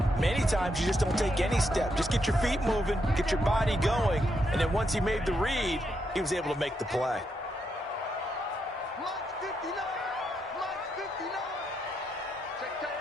Many times you just don't take any step. Just get your feet moving, get your body going, and then once he made the read, he was able to make the play.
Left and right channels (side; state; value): both; normal; correlation 0.80